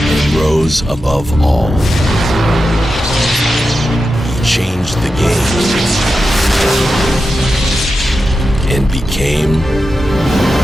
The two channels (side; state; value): both; normal; correlation 0.90